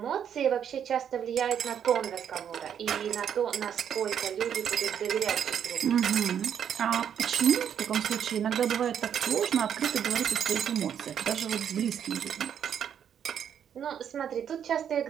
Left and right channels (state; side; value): quieter; left; 8.7 dB